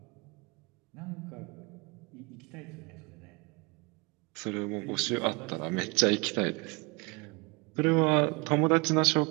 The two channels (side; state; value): left; quieter; 28.5 dB